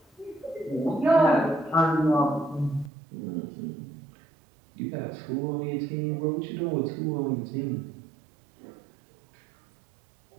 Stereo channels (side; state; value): left; drops out; at 2.9 s